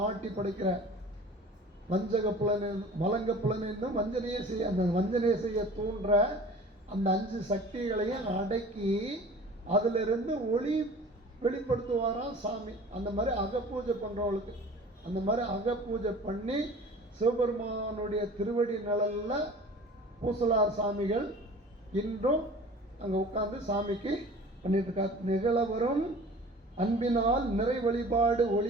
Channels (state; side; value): normal; both; correlation 0.43